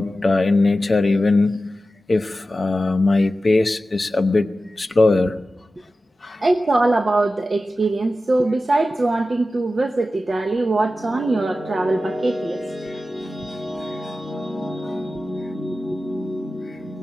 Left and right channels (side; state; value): both; normal; correlation 0.94